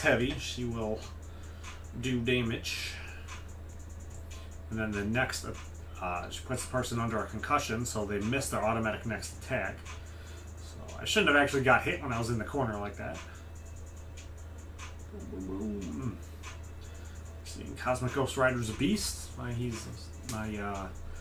heavy, she will do damage. And then the next, she puts the person under a concussion, so they miss their automatic next attack. So I shouldn't have actually got hit when I was in the corner like that. Boom, boom, boom. Cosmic Ghost Rider's a beast.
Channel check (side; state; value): both; identical; correlation 1.00